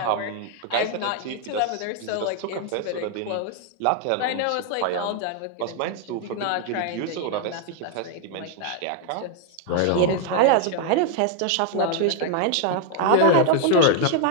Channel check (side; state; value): both; different; correlation 0.00